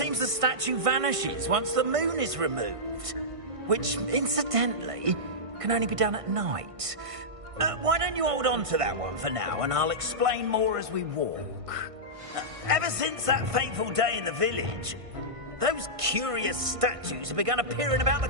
the statue vanishes once the moon is removed, which, incidentally, can only be done at night. Why don't you hold on to that one for now, and I'll explain more as we walk. Ever since that fateful day in the village, those curious statues have begun appearing about the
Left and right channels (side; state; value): left; late; 1.5 ms